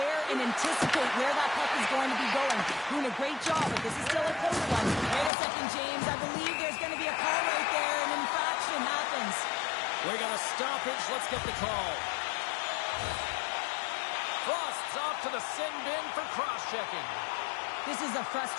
and anticipate where that puck is going to be going. Doing a great job, but this is still a close one. Wait a second, James. I believe there's going to be a call right there. An infraction happens. We got a stoppage. Let's get the call. Frost's off to the sin bin for cross-checking. This is a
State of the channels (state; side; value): drops out; right; at 5.3 s